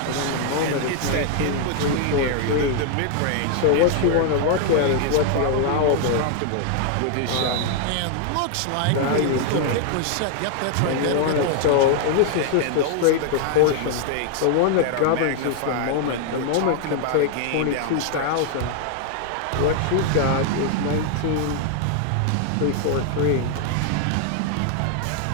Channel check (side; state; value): both; different; correlation 0.00